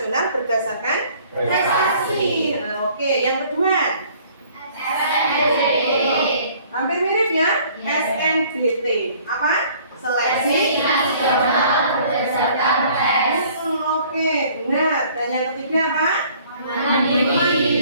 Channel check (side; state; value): both; inverted; correlation -0.56